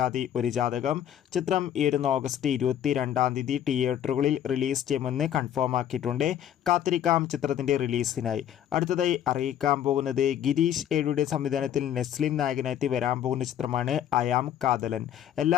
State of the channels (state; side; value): quieter; right; 10.3 dB